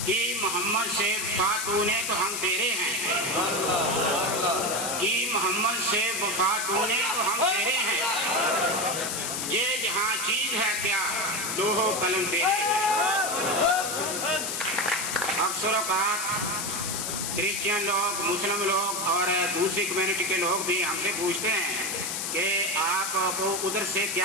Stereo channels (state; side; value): noise; left; hiss, 2 dB below the sound